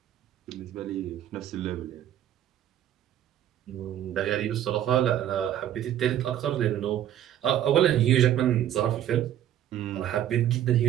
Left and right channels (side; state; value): left; quieter; 11.3 dB